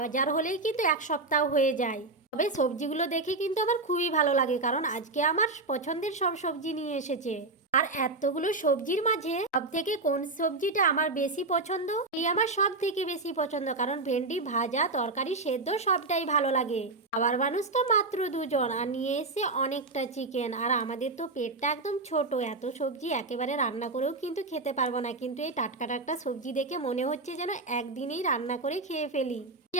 হলেই কিন্তু এক সপ্তাহ হয়ে যায়। তবে সবজিগুলো দেখে কিন্তু আমার খুবই ভালো লাগে, কারণ আজকে আমার পছন্দের সব সবজি নিয়ে এসেছে। আর এতগুলো সবজির মাঝে সব থেকে কোন সবজিটা আমার বেশি পছন্দ, এই আমার সব থেকে বেশি পছন্দ, কারণ ভেন্ডি ভাজা তরকারি সেদ্ধ সবটাই ভালো লাগে। আবার মানুষ তো মাত্র দুজন আর নিয়ে এসে অনেকটা চিকেন, আর আমাদের তো পেটটা একদম ছোট, এত সবজি একেবারে রান্না করেও কিন্তু খেতে পারবো না। কিন্তু এই টাটকা টাটকা সবজি দেখে মনে হচ্ছে যেন একদিনেই রান্না করে খেয়ে ফেলি।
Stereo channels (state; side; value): quieter; left; 3.4 dB